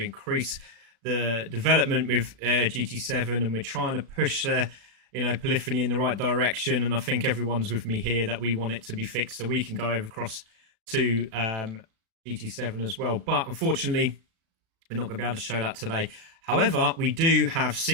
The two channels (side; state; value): left; late; 36 ms